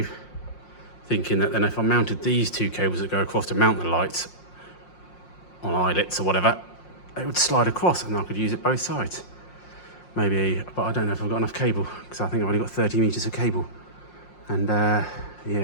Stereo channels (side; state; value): right; late; 5.6 ms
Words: thinking that then if I mounted these 2 cables that go across to mount the lights on eyelets or whatever, it would slide across and I could use it both sides. Maybe, but I don't know if I've got enough cable, because I think I've only got 30 meters of cable. And